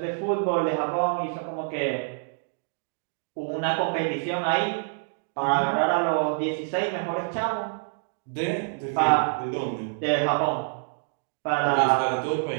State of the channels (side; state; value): left; silent; digital silence